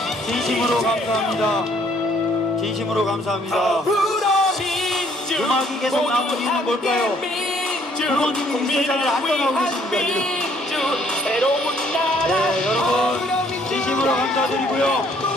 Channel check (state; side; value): normal; both; correlation 0.63